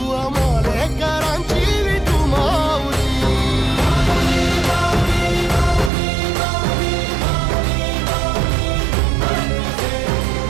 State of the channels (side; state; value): left; drops out; at 5.9 s